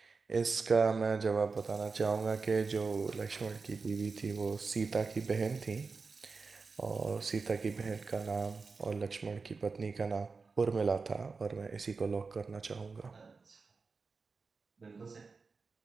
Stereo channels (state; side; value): quieter; left; 4.5 dB